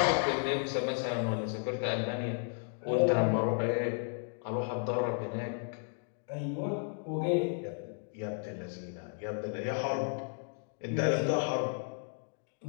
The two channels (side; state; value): right; silent; 55 dB below the other